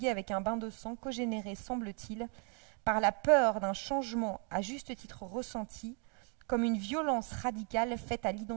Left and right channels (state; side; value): quieter; left; 37.7 dB